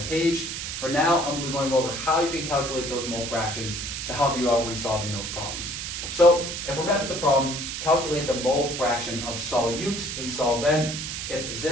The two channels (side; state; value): right; noise; hiss, 5 dB below the sound